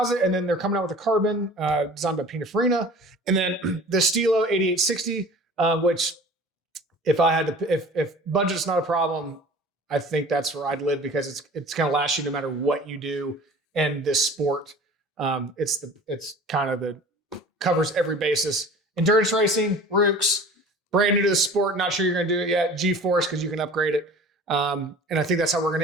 and then they're coming out with a carbon designed by Pininfarina, and then the Stilo 8860, which if budget's not a problem, I think that's where I'd live, because it's going to last you no matter what you do in this sport. It's kind of covers every basis. Endurance racing, Rooks, brand new to the sport. Not sure you're going to do it yet. GeForce, because you can upgrade it. And I think that's how we're going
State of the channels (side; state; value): both; normal; correlation 0.43